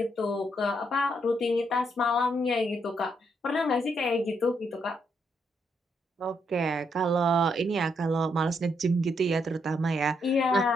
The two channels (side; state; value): both; normal; correlation 0.76